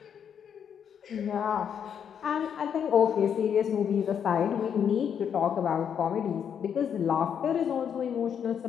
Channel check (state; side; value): quieter; right; 8.1 dB